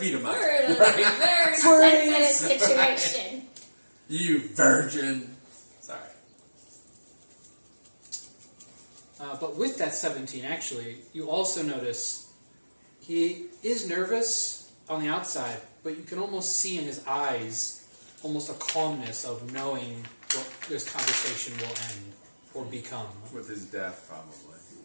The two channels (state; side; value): inverted; both; correlation -1.00